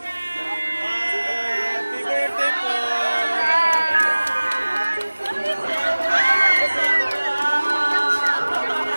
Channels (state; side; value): inverted; both; correlation -1.00